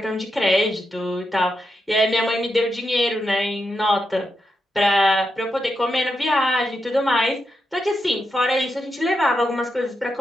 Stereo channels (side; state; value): both; normal; correlation 0.85